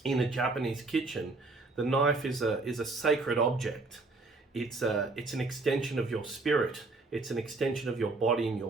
in a Japanese kitchen, the knife is a sacred object. It's an extension of your spirit. It's an extension of your body in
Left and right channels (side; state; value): left; quieter; 3.4 dB